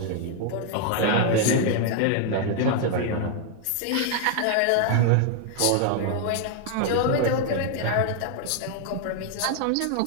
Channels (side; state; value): both; different; correlation 0.00